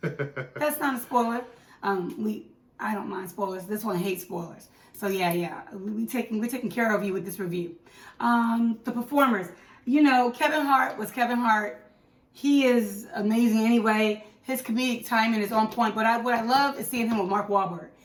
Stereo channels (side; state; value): both; identical; correlation 1.00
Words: That's not a spoiler. I don't mind spoilers. This one hates spoilers. So yeah. We're taking care of you with this review. The performers. Kevin Hart was Kevin Hart. He is amazing anyway. His comedic timing is on point. But what I love is seeing him with Mark Wahlberg.